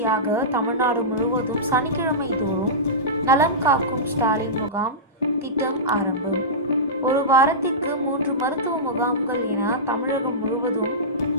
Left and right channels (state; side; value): normal; both; correlation -0.16